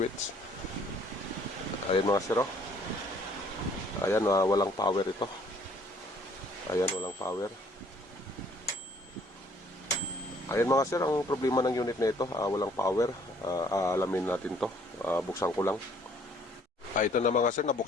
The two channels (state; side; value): normal; both; correlation 0.60